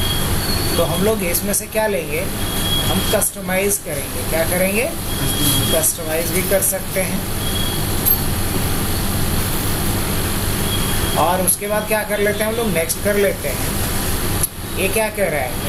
तो हम लोग इसमें से क्या लेंगे? हम कस्टमाइज करेंगे। क्या करेंगे? कस्टमाइज भी कर सकते हैं। और उसके बाद क्या कर लेते हैं हम लोग? नेक्स्ट कर लेते हैं। ये क्या कह रहा है?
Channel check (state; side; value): identical; both; correlation 1.00